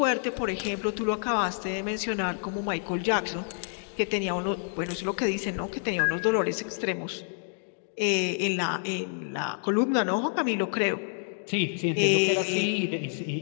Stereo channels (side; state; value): right; silent; 59 dB below the other